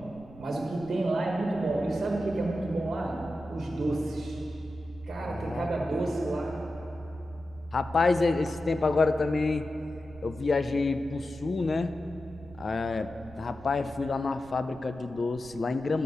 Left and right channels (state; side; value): noise; right; rumble, 20 dB below the sound